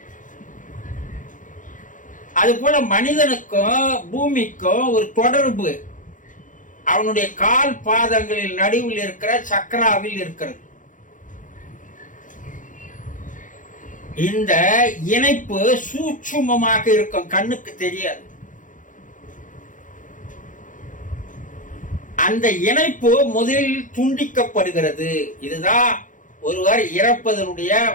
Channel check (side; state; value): right; late; 0.38 ms